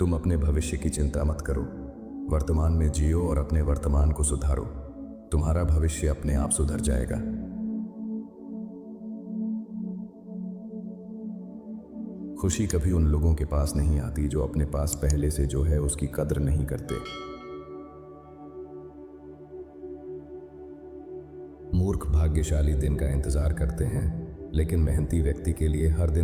अपने भविष्य की चिंता मत करो, वर्तमान में जियो और अपने वर्तमान को सुधारो। तुम्हारा भविष्य अपने आप सुधर जाएगा। खुशी कभी उन लोगों के पास नहीं आती जो अपने पास पहले से जो है उसकी कद्र नहीं करते। मूर्ख भाग्यशाली दिन का इंतजार करते हैं, लेकिन मेहनती व्यक्ति के लिए हर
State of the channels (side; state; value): both; identical; correlation 1.00